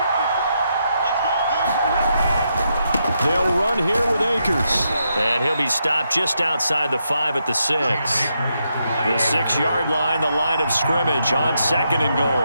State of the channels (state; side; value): inverted; both; correlation -0.81